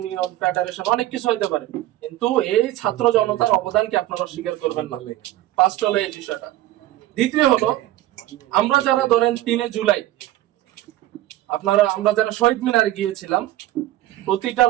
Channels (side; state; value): left; quieter; 14.9 dB